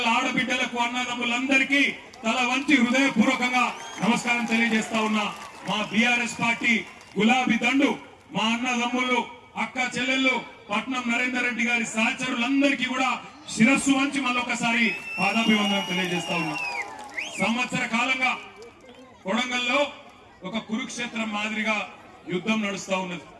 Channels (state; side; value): identical; both; correlation 1.00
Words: ఆడబిడ్డలకు అన్నదమ్ములందరికీ తల వంచి హృదయపూర్వకంగా నమస్కారం తెలియజేస్తా ఉన్నా. మా బీఆర్ఎస్ పార్టీ గులాబీ దండు మా అన్నదమ్ములు అక్క చెల్లెళ్ళు పట్నం నరేందర్ రెడ్డి గారి సహచరులందరికీ కూడా శిరస్సు వంచి మళ్ళొకసారి పాదాభివందనం తెలియజేస్తా ఉన్నా. సంవత్సర కాలంగా కొడంగల్లో ఒక కురుక్షేత్రం మాదిరిగా యుద్ధం నడుస్తా ఉన్నది.